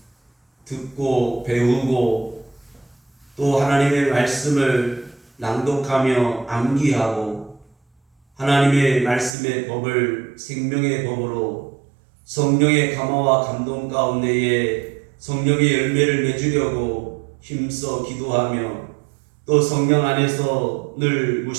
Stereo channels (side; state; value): left; drops out; at 9.3 s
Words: 듣고 배우고 또 하나님의 말씀을 낭독하며 암기하고 하나님의 말씀의 법을 생명의 법으로 성령의 감화와 감동 가운데에 성령의 열매를 맺으려고 힘써 기도하며 또 성령 안에서 늘